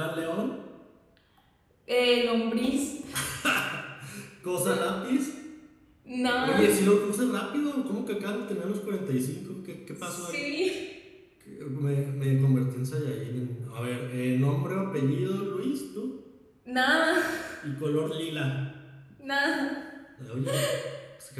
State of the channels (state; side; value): identical; both; correlation 1.00